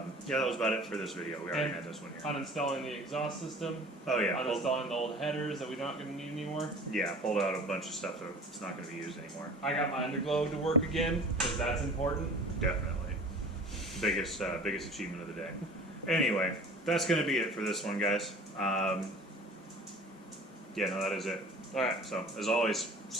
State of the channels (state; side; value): normal; both; correlation 0.43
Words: that was about it for this video. We already had this one here. Uninstalling the exhaust system. Oh yeah, Uninstalling the old headers that we're not going to need anymore. yeah, pulled out a bunch of stuff that's not going to be used anymore. I got my underglow to work again because that's important. Definitely, biggest achievement of the day. Anyway, that's going to be it for this one, guys. Yeah, no, that is it. All right. So as always,